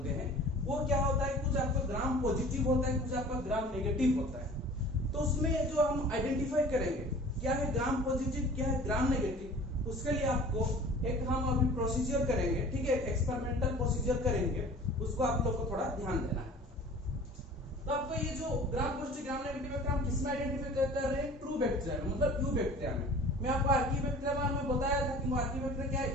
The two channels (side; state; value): both; normal; correlation 0.44